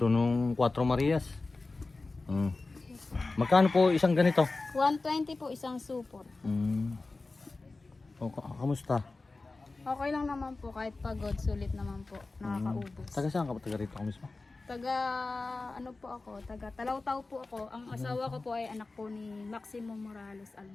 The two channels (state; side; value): quieter; right; 3.5 dB